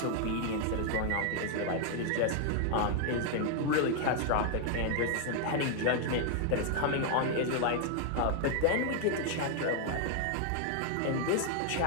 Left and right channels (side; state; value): both; different; correlation 0.00